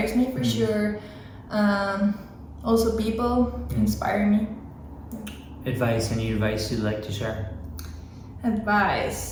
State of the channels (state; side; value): identical; both; correlation 1.00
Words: me for sure. Also, people inspire me. Advice, any advice you'd like to share?